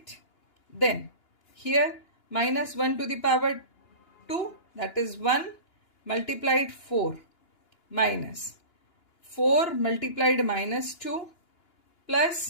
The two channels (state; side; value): late; right; 2.9 ms